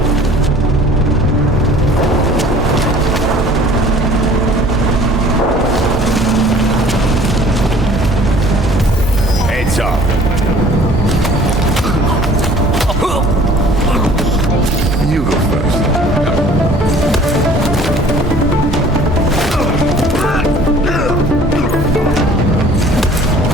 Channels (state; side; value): normal; both; correlation 0.51